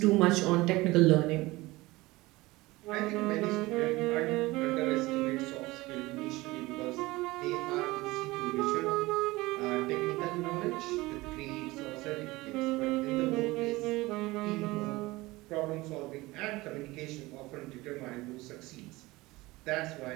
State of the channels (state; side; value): quieter; left; 20.6 dB